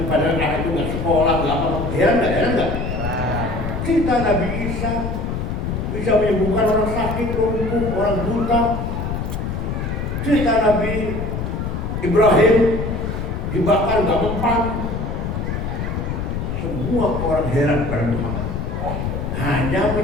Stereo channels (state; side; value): noise; left; rumble, 3 dB below the sound